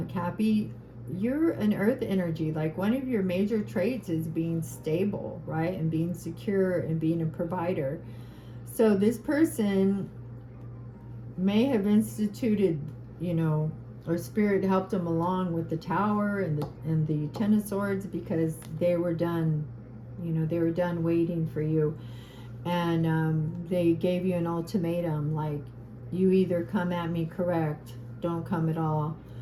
Cappy. You're an earth energy. Like, one of your major traits is being stable, right? And being secure and being a provider. So this person may have instituted, you know, or spirit helped them along with the Tower and the Ten of Swords, because they were done, you know, they were done waiting for you. And they gave you an ultimatum, like, you either come at me correct, don't come at all.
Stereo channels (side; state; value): both; identical; correlation 1.00